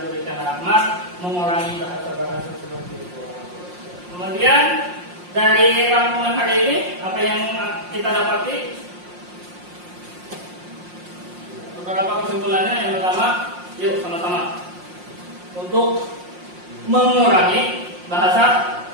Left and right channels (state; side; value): late; left; 5.6 ms